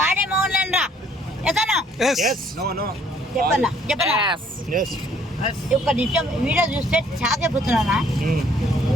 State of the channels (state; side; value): normal; both; correlation 0.62